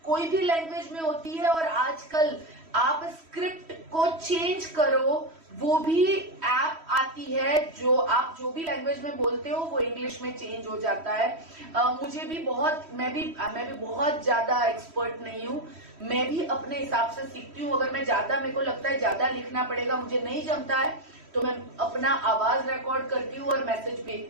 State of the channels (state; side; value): late; left; 3.1 ms